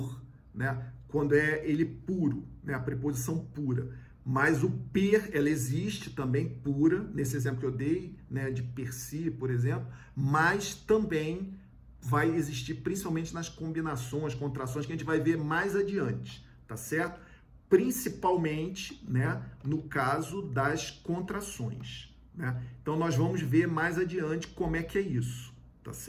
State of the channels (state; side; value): identical; both; correlation 1.00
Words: né? Quando é ele puro, né? A preposição pura. Mas o per, ela existe também pura, nesse exemplo que eu dei, né? De per si, por exemplo, mas também vai existir principalmente nas combinações, contrações, que a gente vai ver mais adiante, tá certo? Principalmente, né, no caso das contrações, né? Então, nós vamos ver mais adiante como é que é isso, tá